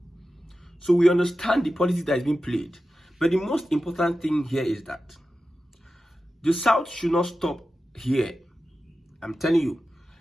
So we understand the politics that is being played. But the most important thing here is that the South should not stop here. I'm telling you,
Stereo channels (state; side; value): normal; both; correlation 0.93